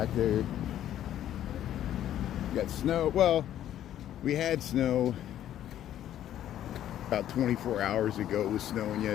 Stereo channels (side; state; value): right; quieter; 11.6 dB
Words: there. We got snow. Well, we had snow about 24 hours ago. It was snowing